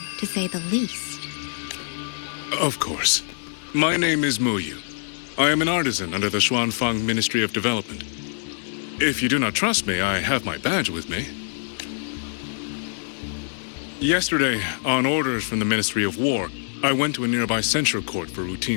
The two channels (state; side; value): silent; right; 62 dB below the other